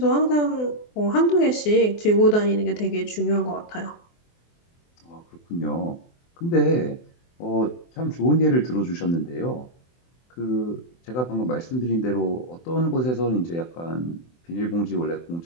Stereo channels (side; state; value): right; late; 24 ms